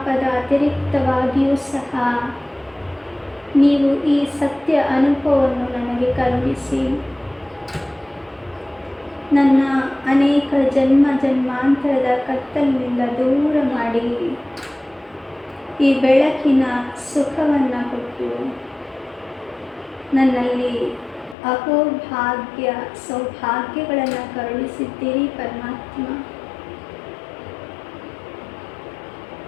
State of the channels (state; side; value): drops out; right; at 21.4 s